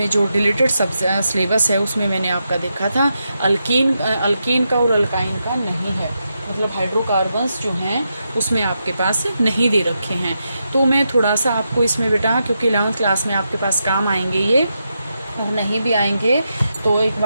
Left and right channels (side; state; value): both; inverted; correlation -0.85